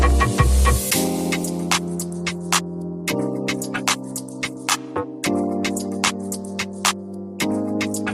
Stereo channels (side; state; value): both; identical; correlation 1.00